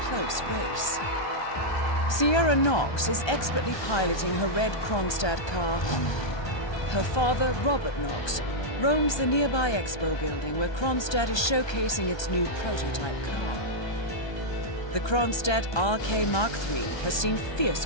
close race. Sierra Knox is expertly piloting her red Kronstadt car. Her father, Robert Knox, roams the nearby expo building where Kronstadt is showcasing its new prototype car. The Kronstadt RK Mark III has seen fierce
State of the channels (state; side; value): late; right; 1.2 ms